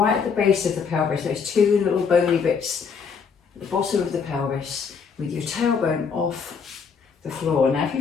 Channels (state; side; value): quieter; right; 5.9 dB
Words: at the base of the pelvis, those two little bony bits at the bottom of the pelvis, with your tailbone off the floor. Now if you